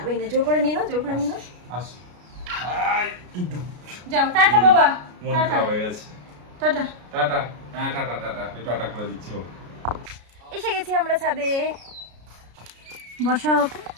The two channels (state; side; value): late; left; 33 ms